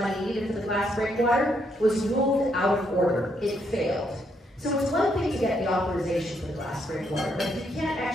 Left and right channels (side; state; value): both; normal; correlation 0.75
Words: needed for the glass breakwater was ruled out of order. It failed. So it's one thing to get the authorization for the glass breakwater, but if you can't